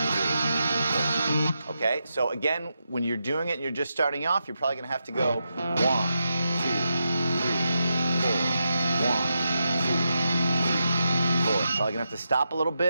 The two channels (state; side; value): inverted; both; correlation -0.86